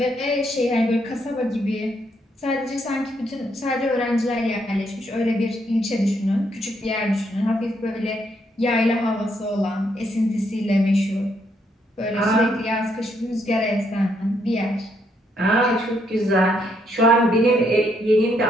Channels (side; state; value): both; normal; correlation 0.74